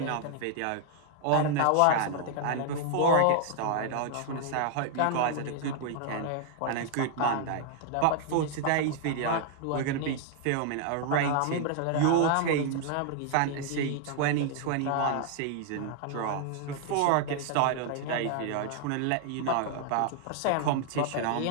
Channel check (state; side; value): different; both; correlation 0.00